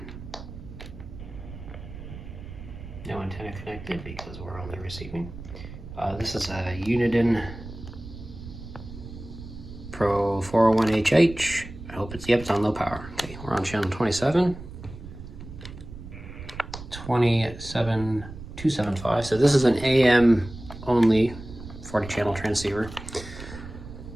antenna connected because we're only receiving. This is a Uniden Pro 401HH. I hope it's on low power. Okay, we're on channel 27275. So this is an AM only 40 channel transceiver.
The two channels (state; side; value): noise; right; rumble, 13 dB below the sound